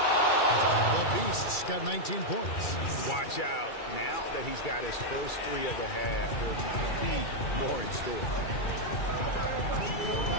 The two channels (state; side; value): late; right; 2.3 ms